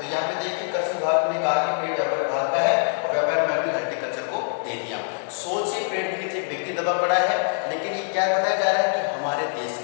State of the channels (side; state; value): right; silent; digital silence